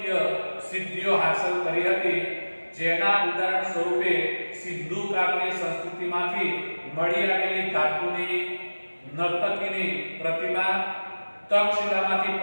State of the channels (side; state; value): both; inverted; correlation -1.00